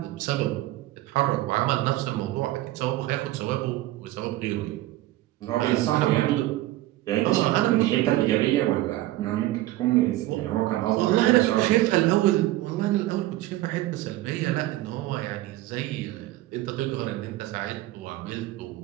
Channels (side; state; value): left; quieter; 16.3 dB